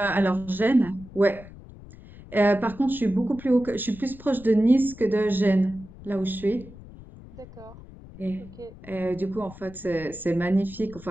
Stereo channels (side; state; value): left; noise; rumble, 18 dB below the sound